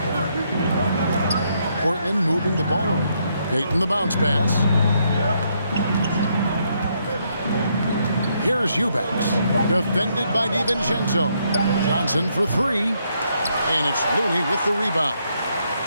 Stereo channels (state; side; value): inverted; both; correlation -0.75